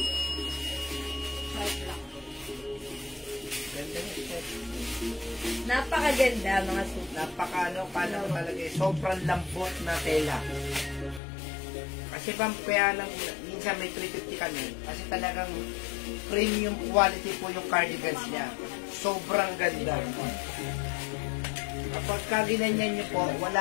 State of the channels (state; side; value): drops out; right; at 11.2 s